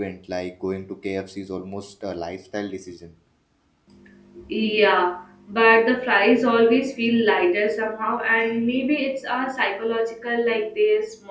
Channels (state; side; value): identical; both; correlation 1.00